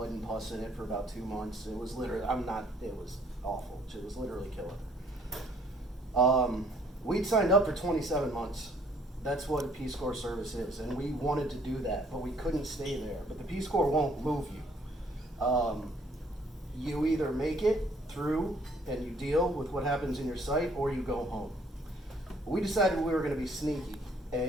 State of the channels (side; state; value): both; normal; correlation 0.62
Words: and pus in it for about 2 months. It was literally, it was awful. It was literally killing her. We'd signed up for 27 months. That's what a Peace Corps service is, and we wanted to do that, but we couldn't stay there. But the Peace Corps won't move you. You either make it through and you deal with what happens in your site, or you go home. We decided we were going to be sneaky